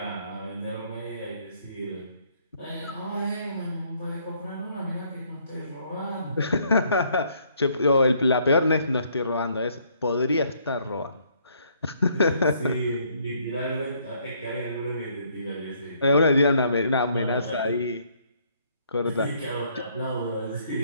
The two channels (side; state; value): both; inverted; correlation -0.66